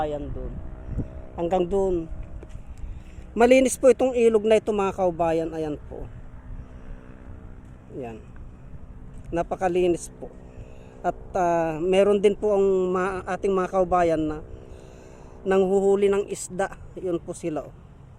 doon. Hanggang doon. Malinis po itong ilog na ito mga kaubayan. Ayan po. Ayan. Napakalinis po. At meron din po ang ating mga kaubayan na nanghuhuli ng isda. Yun po sila.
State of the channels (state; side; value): identical; both; correlation 1.00